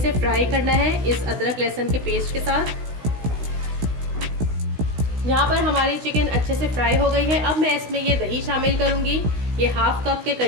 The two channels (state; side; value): late; left; 16 ms